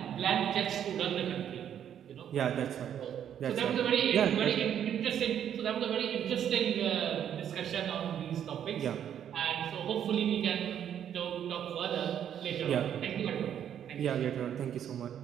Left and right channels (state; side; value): quieter; left; 9.5 dB